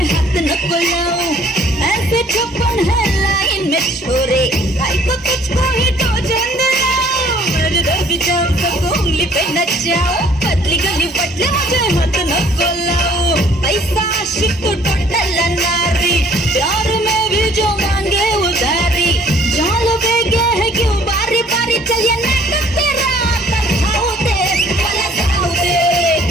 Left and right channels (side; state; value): both; normal; correlation 0.57